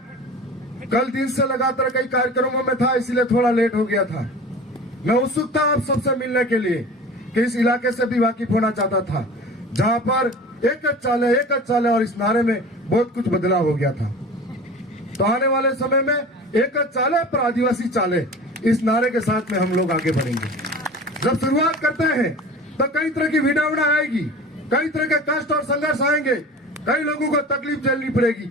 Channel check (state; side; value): normal; both; correlation 0.38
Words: कल दिन से लगातार कई कार्यक्रमों में था, इसलिए थोड़ा लेट हो गया था। मैं उत्सुक था आप सबसे मिलने के लिए कि इस इलाके से भी वाकिफ होना चाहता था, जहां पर एक चाले और इस नारे में बहुत कुछ बदलाव हो गया था। तो आने वाले समय में एक चाले पर आदिवासी चाले, इस नारे के साथ में हम लोग आगे बढ़ेंगे। जब शुरुआत करते हैं तो कई तरह की विडंबना आएगी, कई तरह के कष्ट और संघर्ष आएंगे, कई लोगों को तकलीफ झेलनी पड़ेगी